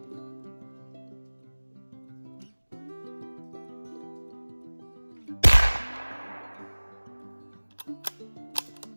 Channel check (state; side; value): inverted; both; correlation -1.00